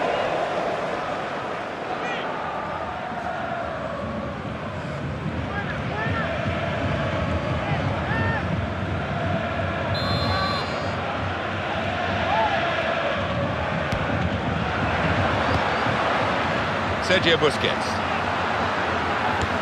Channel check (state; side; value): identical; both; correlation 1.00